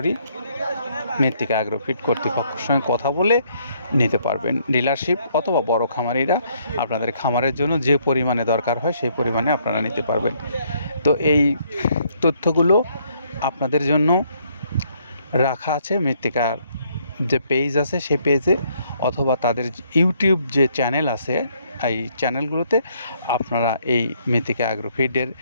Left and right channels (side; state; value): both; inverted; correlation -0.69